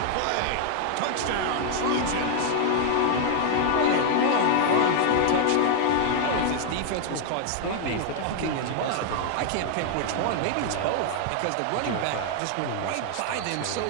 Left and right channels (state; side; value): different; both; correlation 0.00